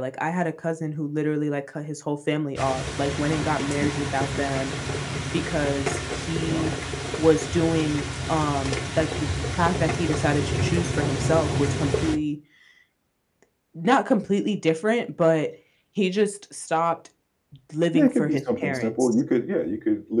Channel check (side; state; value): both; identical; correlation 1.00